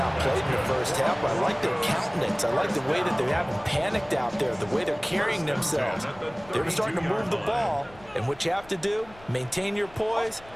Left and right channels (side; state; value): left; noise; rumble, 23 dB below the sound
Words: in the first half, but I like their countenance. I like the way that they haven't panicked out there, the way they're carrying themselves. They're starting to move the ball, and what you have to do, maintain your poise